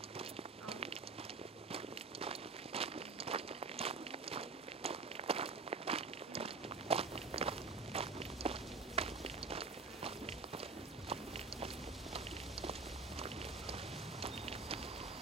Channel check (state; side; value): quieter; left; 4.1 dB